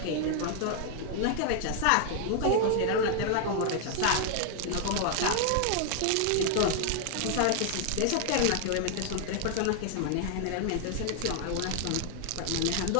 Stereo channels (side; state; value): both; different; correlation 0.00